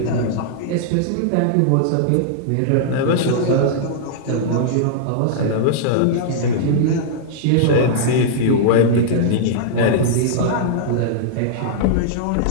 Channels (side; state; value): both; different; correlation -0.02